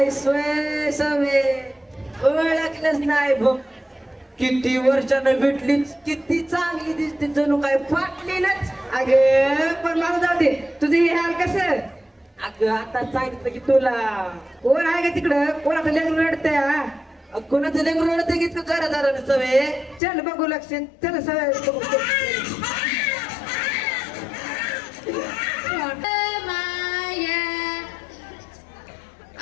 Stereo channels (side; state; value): right; drops out; at 20.0 s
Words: स्वय सवे ओळखलंच नाही बघ किती वर्षानं भेटलीच किती चांगली दिसते जणू काय फाटलेलंच अगं पण मला जाऊ दे तुझं हे हाल कसं. अग आता सांगितलं की तुला कोण आहे का तिकडं कोणाचं लेकरं रडतंय? कोणाचं लेकरं रडतं की तू जरा जरा सवे चल बघू लक्ष चल सवय बघू.